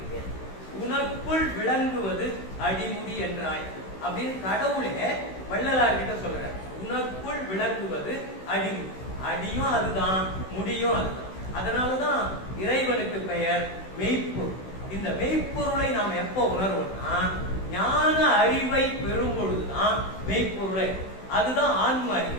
உனக்குள் விளங்குவது அடிமுடி என்றாய் அப்படின்னு கடவுளே வள்ளலார் கிட்ட சொல்றார். உனக்குள் விளங்குவது அடிமுடி. அடியும் அதுதான், முடியும் அதுதான். அதனாலதான் இறைவனுக்கு பெயர் மெய்ப்பொருள். இந்த மெய்ப்பொருளை நாம் எப்போ உணர்வோம்னா ஞான அறிவை பெறும் பொழுதுதான் மெய்ப்பொருளை. அதுதான் ஆன்ம அறிவு.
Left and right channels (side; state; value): right; late; 16 ms